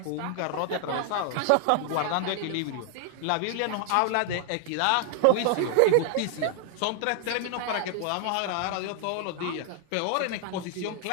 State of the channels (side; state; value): both; different; correlation 0.00